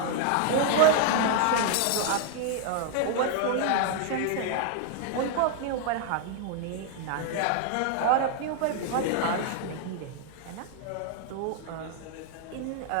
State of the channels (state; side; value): different; both; correlation 0.00